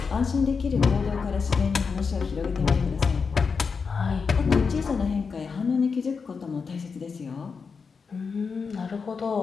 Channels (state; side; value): quieter; right; 5.3 dB